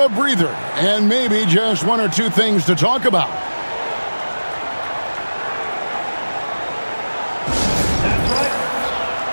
a breather, and maybe just 1 or 2 things to talk about.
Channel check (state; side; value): inverted; both; correlation -1.00